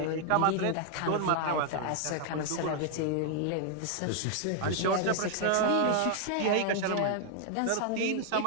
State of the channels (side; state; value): both; different; correlation 0.00